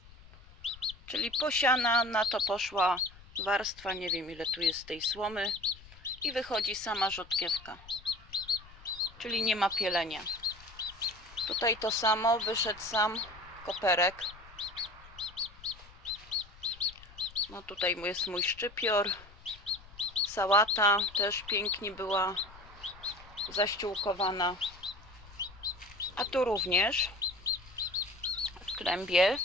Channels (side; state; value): left; noise; rumble, 21 dB below the sound